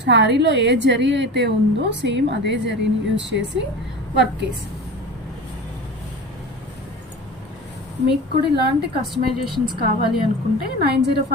శారీలో ఏ జరీ అయితే ఉందో సేమ్ అదే జరీని యూజ్ చేసి వర్క్ వేసాం. మీకు కూడా ఇలాంటి కస్టమైజేషన్స్ కావాలి అనుకుంటే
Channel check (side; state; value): both; normal; correlation 0.33